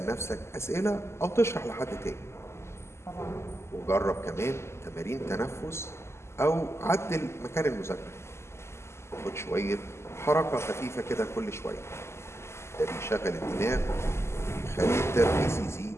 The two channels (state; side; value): late; right; 0.13 ms